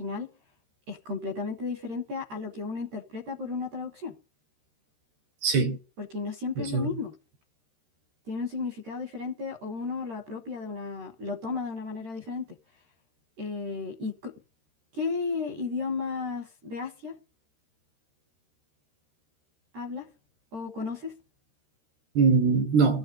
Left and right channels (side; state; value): left; late; 13 ms